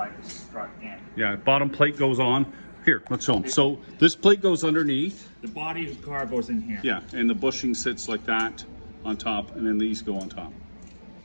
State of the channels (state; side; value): inverted; both; correlation -1.00